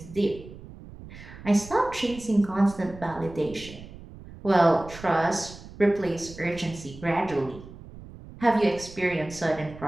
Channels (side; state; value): right; noise; rumble, 16 dB below the sound